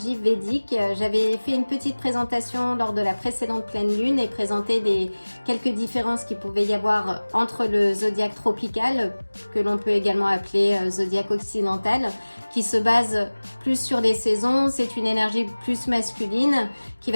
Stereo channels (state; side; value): inverted; both; correlation -1.00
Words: védique. J'avais fait une petite présentation lors de la précédente pleine lune et présenté quelques différences qu'il pouvait y avoir entre le zodiaque tropical, que l'on peut également appeler zodiaque occidental, qui se base plus sur les saisons. C'est une énergie plus masculine qui